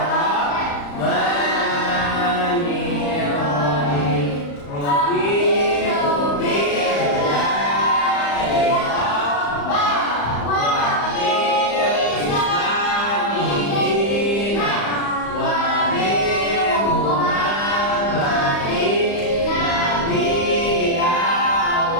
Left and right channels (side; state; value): right; late; 35 ms